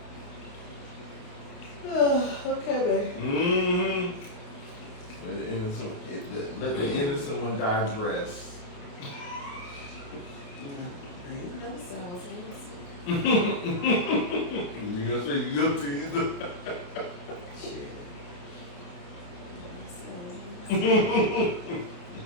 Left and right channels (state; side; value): late; right; 29 ms